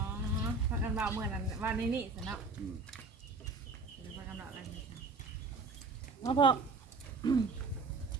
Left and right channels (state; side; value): quieter; left; 3.9 dB